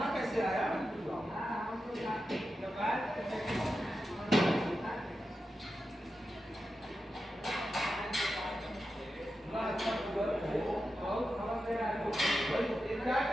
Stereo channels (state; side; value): normal; both; correlation 0.90